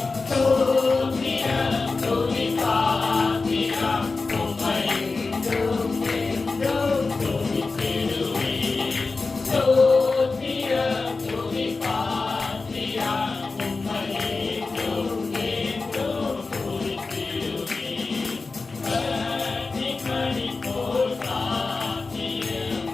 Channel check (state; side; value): quieter; right; 3.9 dB